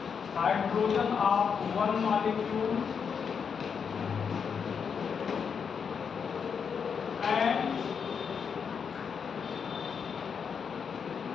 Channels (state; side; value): quieter; right; 6.6 dB